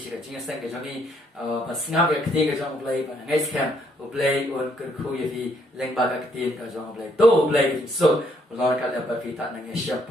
cái chính sang cái johnny và snap cái tiền cái trong play và ngay scam play on cái khu ye fi leng ba cái tiền cái trong play to play so lo cái là ba fi ta nang share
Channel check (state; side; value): normal; both; correlation 0.70